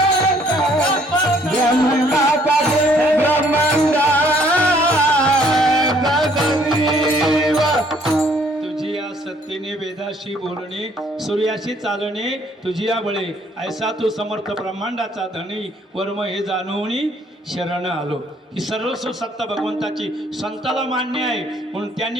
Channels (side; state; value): both; normal; correlation 0.63